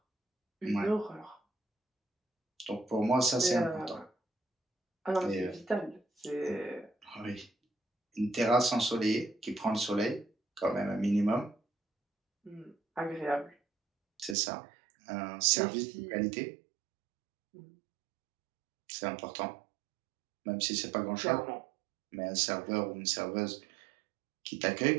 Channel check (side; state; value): left; drops out; at 14.4 s